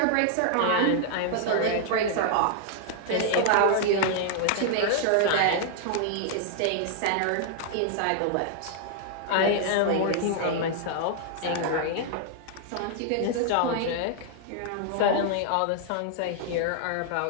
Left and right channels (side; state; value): both; different; correlation 0.00